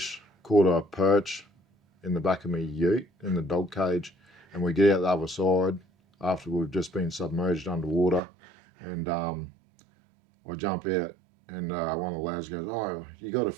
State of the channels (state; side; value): drops out; left; at 8.2 s